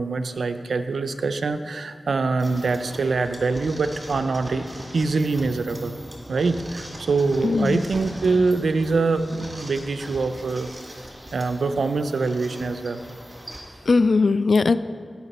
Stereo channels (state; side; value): normal; both; correlation 0.91